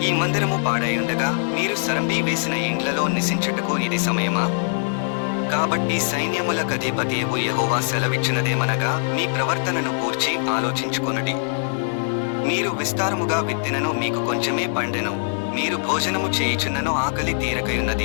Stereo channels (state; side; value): silent; right; 64 dB below the other